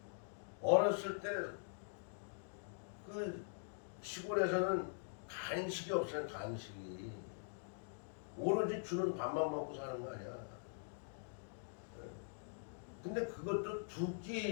어렸을 때 그 시골에서는 간식이 없어요. 간식이 오로지 주는 밥만 먹고 사는 거 아니야. 예. 근데 그것도 두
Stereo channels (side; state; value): right; silent; digital silence